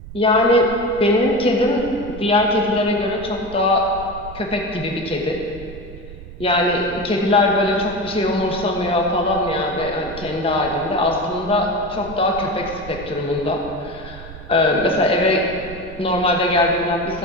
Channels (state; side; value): noise; right; rumble, 15 dB below the sound